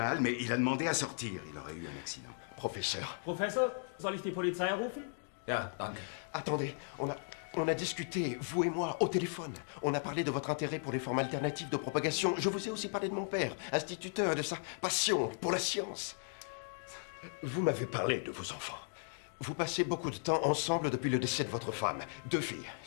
mais il a demandé à sortir. Il aurait eu un accident. Professeur. Professor, soll ich die Polizei rufen? Ja, danke. Attendez, on a discuté, vous et moi, au téléphone. On a parlé de votre intérêt pour les formes alternatives de propagation. Je vous ai aussi parlé de mon père, instituteur, et de sa passion pour la science. Vous m'avez parlé de vos enfants. Vous passez beaucoup de temps ensemble depuis le décès de votre femme. 2 filles,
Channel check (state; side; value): silent; right; 53 dB below the other